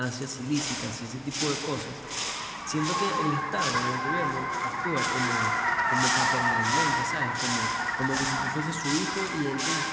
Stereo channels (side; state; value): both; identical; correlation 1.00